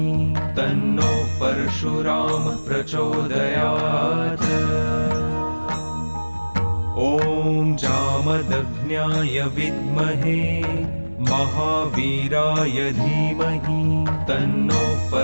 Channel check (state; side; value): inverted; both; correlation -1.00